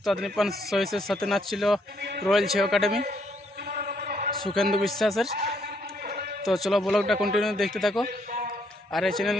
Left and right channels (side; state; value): both; normal; correlation 0.71